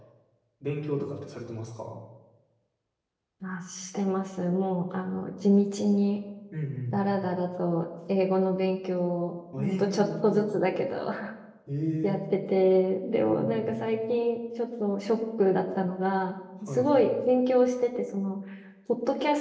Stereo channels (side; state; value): both; identical; correlation 1.00